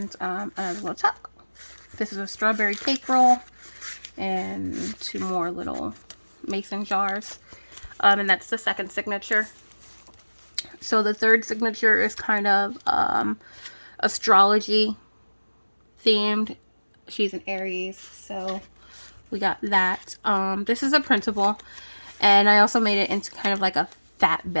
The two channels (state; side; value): inverted; both; correlation -1.00